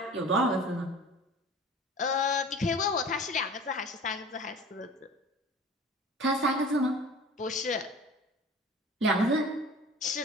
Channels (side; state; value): both; normal; correlation 0.41